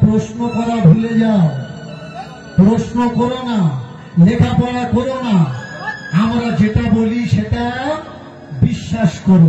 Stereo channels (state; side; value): identical; both; correlation 1.00